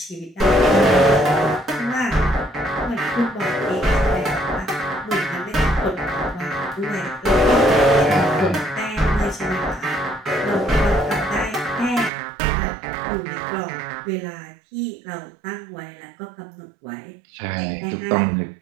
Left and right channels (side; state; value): left; drops out; at 12.1 s